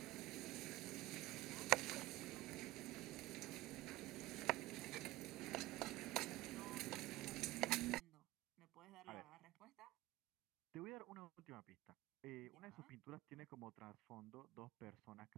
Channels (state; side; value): quieter; left; 18.3 dB